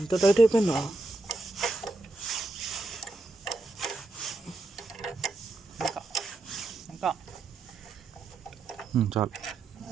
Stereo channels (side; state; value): left; quieter; 3.1 dB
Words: టైట్ అయిపోయిందా ఇంకా చాలు